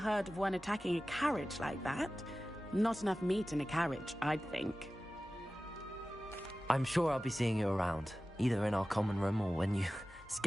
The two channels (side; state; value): both; normal; correlation 0.96